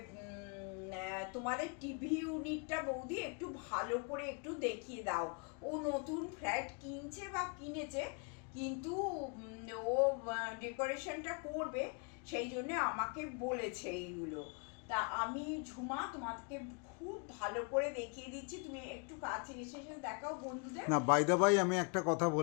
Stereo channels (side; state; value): right; quieter; 36.0 dB